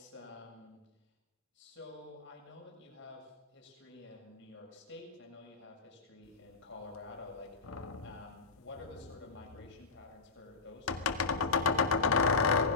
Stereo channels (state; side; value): quieter; right; 4.4 dB